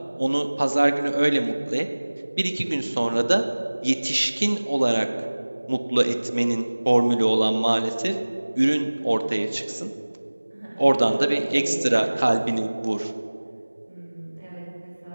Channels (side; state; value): both; inverted; correlation -1.00